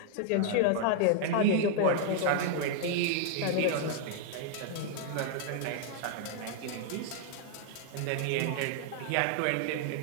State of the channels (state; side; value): different; both; correlation 0.00